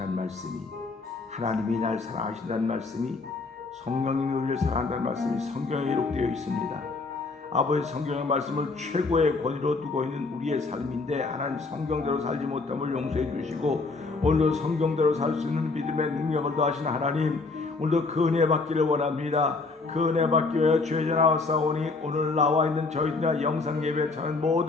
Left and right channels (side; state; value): right; quieter; 3.9 dB